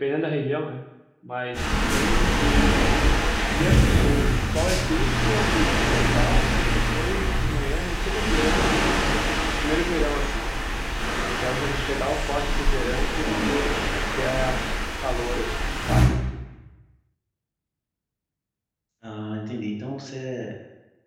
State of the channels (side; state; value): both; identical; correlation 1.00